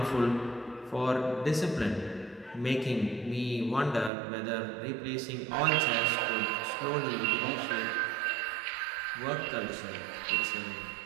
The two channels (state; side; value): drops out; left; at 4.1 s